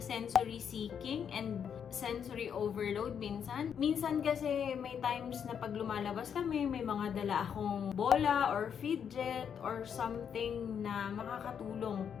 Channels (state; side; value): quieter; right; 7.8 dB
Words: sensory seeking and sensory overload minsan. Minsan kasi may times na pag lumalabas kami, may mga dala akong bola or fidget or something na makakatulong